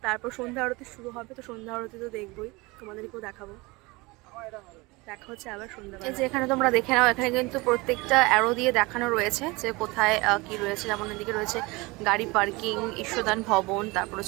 তারপর সন্ধ্যা আরতি শুরু হবে। তো সন্ধ্যা আরতি তো দেখবোই, তোমাদেরকেও দেখাবো। দেখা হচ্ছে আবার সন্ধ্যাবেলা। এই যে এখানে তোমরা দেখে নাও, এখানে কিন্তু প্রত্যেকটা অ্যারো দিয়ে দেখানো রয়েছে যে কোথায় কি রয়েছে। যেমন এদিকে রয়েছে গাড়ি পার্কিং, ঈশ্বরদান ভবন, তারপর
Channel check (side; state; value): left; quieter; 24.1 dB